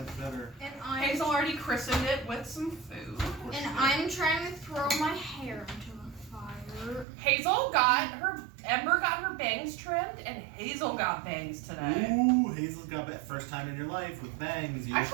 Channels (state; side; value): drops out; left; at 7.1 s